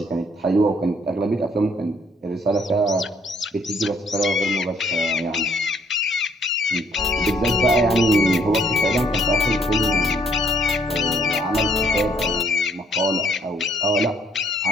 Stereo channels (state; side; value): normal; both; correlation 0.65